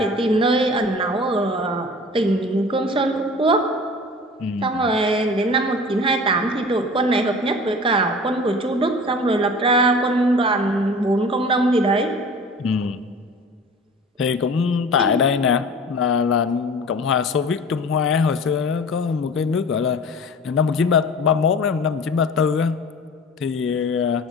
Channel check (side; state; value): both; normal; correlation 0.40